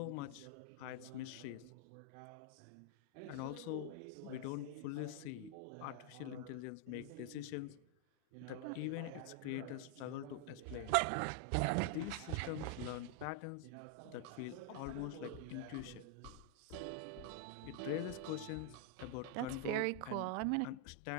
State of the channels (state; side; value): different; both; correlation 0.00